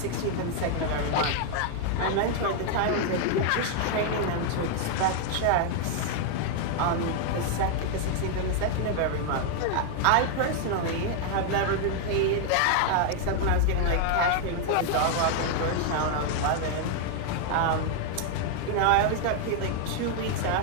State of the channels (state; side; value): different; both; correlation 0.00